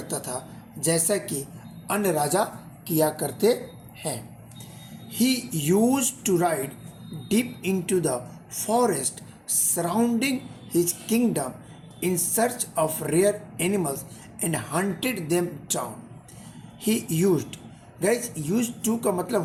था जैसा कि अन्य राजा किया करते हैं। He used to ride deep into the forest surrounding his kingdom in search of rare animals and hunted them down. He used, guys, used to का मतलब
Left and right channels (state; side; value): identical; both; correlation 1.00